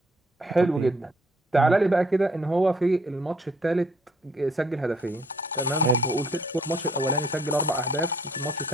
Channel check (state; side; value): normal; both; correlation 0.64